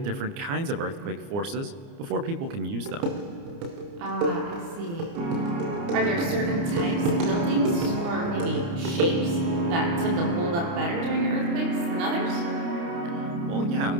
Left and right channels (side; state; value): left; late; 29 ms